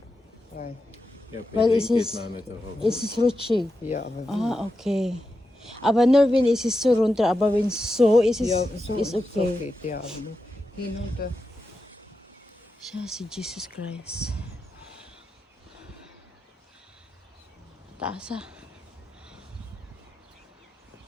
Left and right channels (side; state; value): both; normal; correlation 0.89